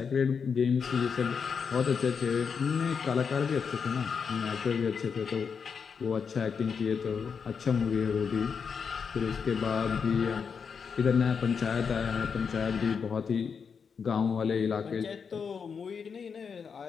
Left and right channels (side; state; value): right; quieter; 6.2 dB